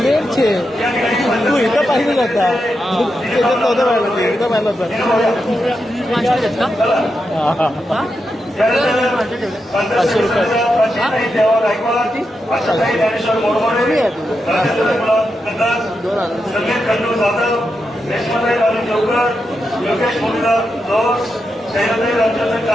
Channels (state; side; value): normal; both; correlation 0.86